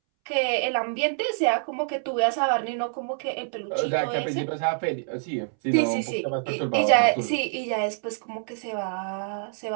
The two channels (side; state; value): left; silent; 61 dB below the other